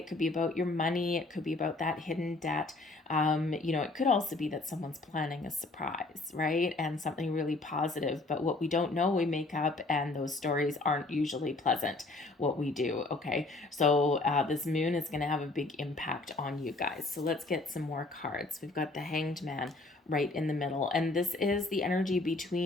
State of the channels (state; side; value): quieter; right; 3.2 dB